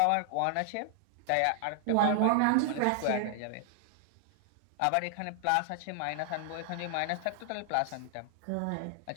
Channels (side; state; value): both; different; correlation 0.00